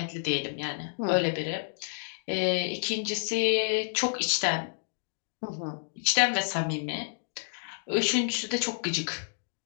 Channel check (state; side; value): silent; right; digital silence